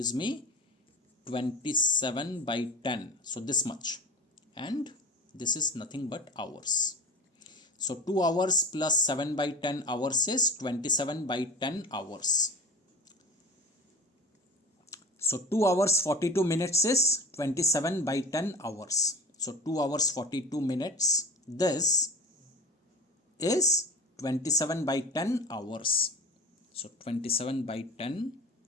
me 27 by 10. So this much. And this is nothing but hours. So 2 hours plus 7 by 10 hours is 27 by 10 hours. So 2 hours 42 minutes is 27 by 10 hours. So 2 hours 42 minutes, this is 27 by 10 hours. So 27 by 10,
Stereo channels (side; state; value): both; normal; correlation 0.34